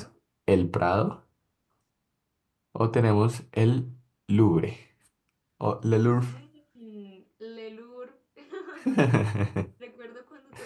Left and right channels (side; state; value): both; identical; correlation 1.00